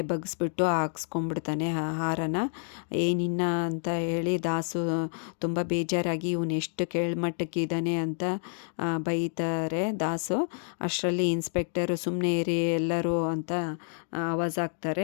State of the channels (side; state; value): right; silent; digital silence